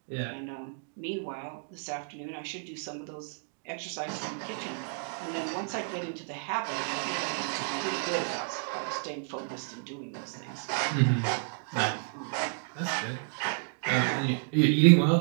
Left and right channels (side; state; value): left; silent; 57 dB below the other